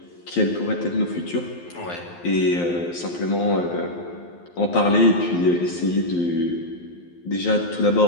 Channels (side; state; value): right; late; 11 ms